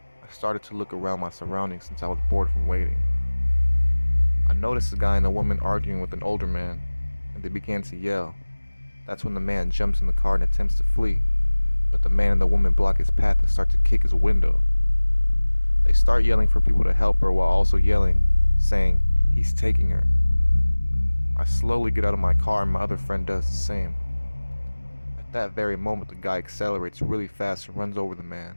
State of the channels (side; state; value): both; inverted; correlation -1.00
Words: I started to look around my surroundings since I was bored from waiting. I noticed a guy and a woman arguing with an older man, and they began to yell. That's when the man jumps in the car and attempts to flee, but the man and the woman block his path and start to kick his window. They start yelling for people to help her while also yelling, saying, "He's taking her." I slowly get out of my car and my other friend does the same. At that very moment, the guy accelerates really fast and runs over the man.